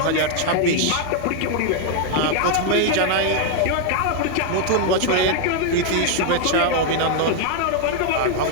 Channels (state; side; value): different; both; correlation 0.00